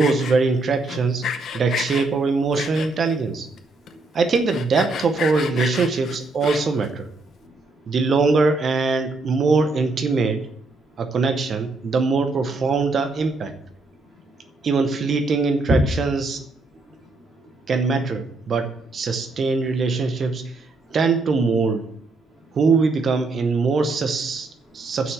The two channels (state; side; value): quieter; left; 3.4 dB